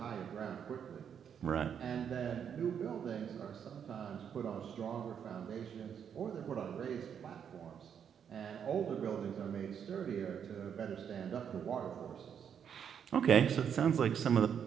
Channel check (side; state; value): left; quieter; 8.0 dB